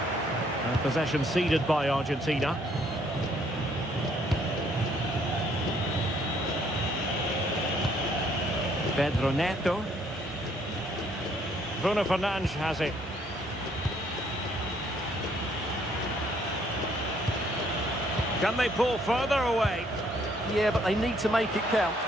And possession ceded by Argentina. Pedro Neto. Bruno Fernandes has it. Can they pull further away? Yeah, but they need to make it count.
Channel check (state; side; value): normal; both; correlation 0.66